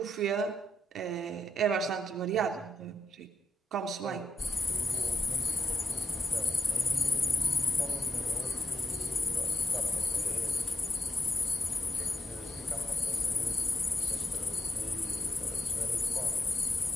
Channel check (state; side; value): normal; both; correlation 0.82